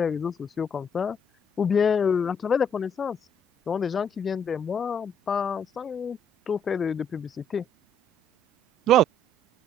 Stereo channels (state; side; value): normal; both; correlation 0.68